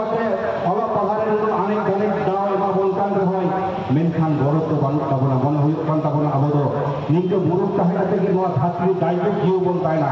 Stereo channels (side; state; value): both; identical; correlation 1.00